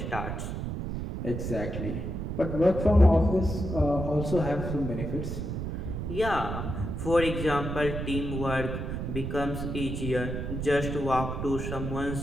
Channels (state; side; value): noise; right; rumble, 4 dB below the sound